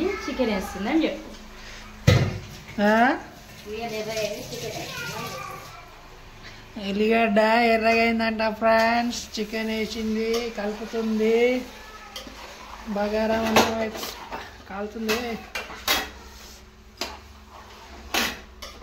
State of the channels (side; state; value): both; identical; correlation 1.00